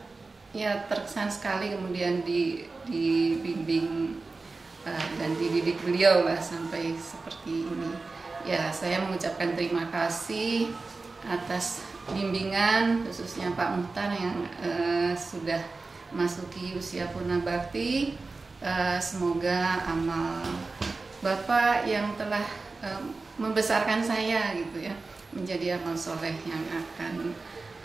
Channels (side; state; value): left; quieter; 3.8 dB